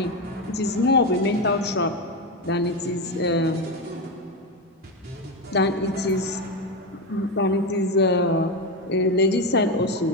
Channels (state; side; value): normal; both; correlation 0.13